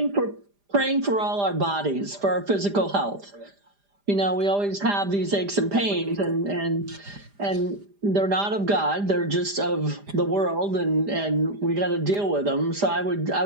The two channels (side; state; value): left; late; 5.0 ms